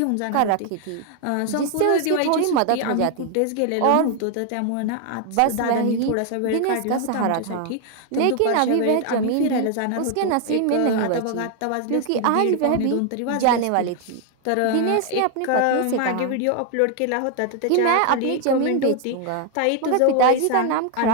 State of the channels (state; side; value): different; both; correlation 0.00